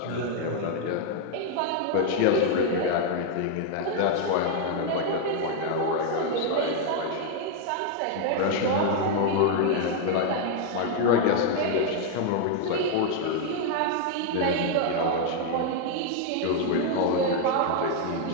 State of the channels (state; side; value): different; both; correlation 0.00